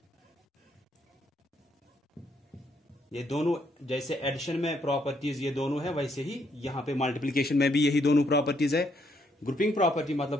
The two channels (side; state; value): both; normal; correlation 0.73